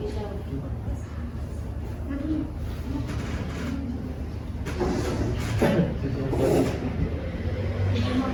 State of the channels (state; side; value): identical; both; correlation 1.00